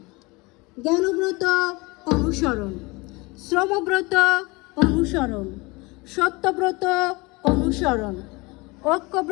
জ্ঞানব্রত অনুসরণ, শ্রমব্রত অনুসরণ, সত্যব্রত অনুসরণ,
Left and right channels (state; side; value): quieter; right; 25.0 dB